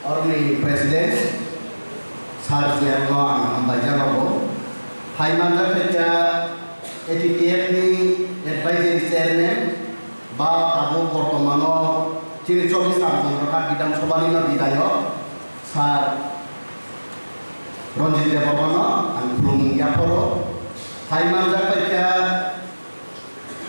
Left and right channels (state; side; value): inverted; both; correlation -1.00